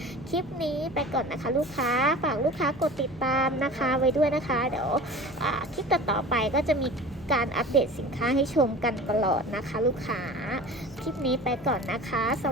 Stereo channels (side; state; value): left; noise; hum, 20 dB below the sound